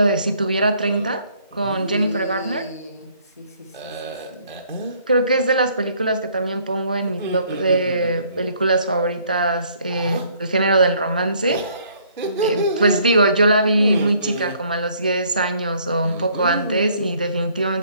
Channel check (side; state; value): both; inverted; correlation -0.63